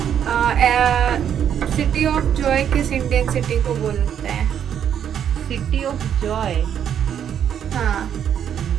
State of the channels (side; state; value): left; quieter; 9.1 dB